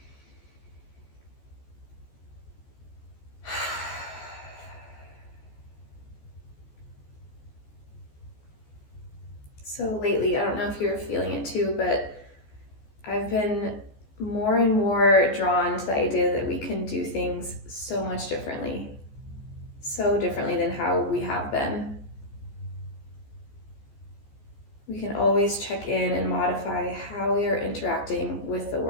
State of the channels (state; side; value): late; right; 14 ms